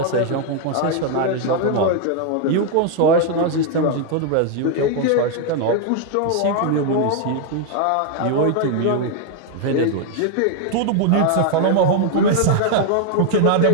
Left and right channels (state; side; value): different; both; correlation 0.00